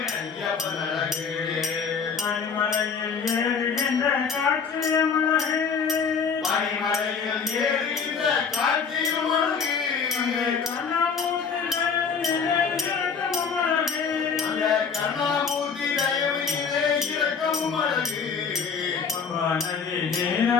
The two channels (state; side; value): quieter; right; 5.9 dB